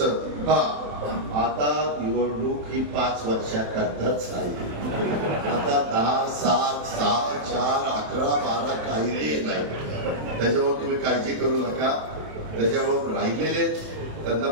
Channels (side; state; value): left; late; 27 ms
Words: आता निवडणूक ही 5 वर्षाकरताच राहिली. आता 10, 7, 6, 4, 11, 12 काही नाही. त्याच्यावर तुम्ही काळजी करू नका. त्याच्यावर राहिलेले त्यांना